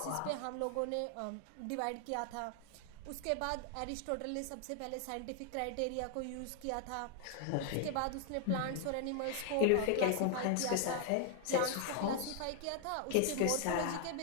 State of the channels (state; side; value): different; both; correlation 0.00